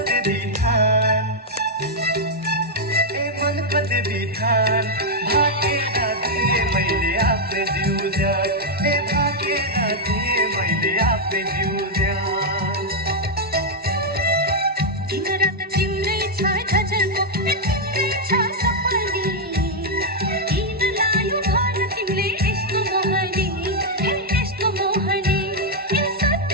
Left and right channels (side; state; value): both; normal; correlation -0.02